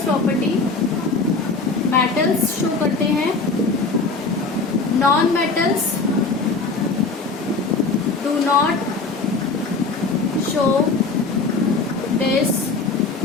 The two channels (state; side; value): quieter; right; 4.0 dB